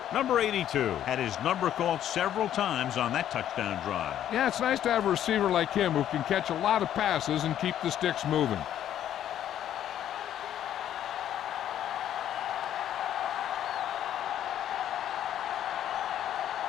Number 82 had his number called several times on that touchdown drive. Yeah, it's nice to have a receiver like him who can catch a lot of passes and keep the sticks moving.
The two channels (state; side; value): quieter; right; 11.0 dB